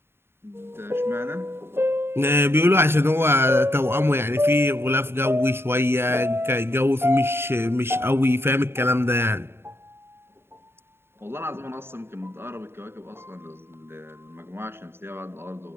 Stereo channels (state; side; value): late; left; 0.11 ms